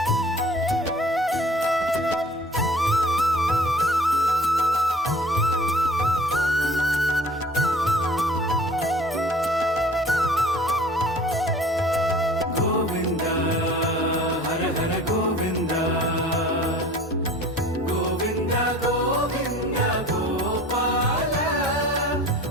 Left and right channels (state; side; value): normal; both; correlation 0.47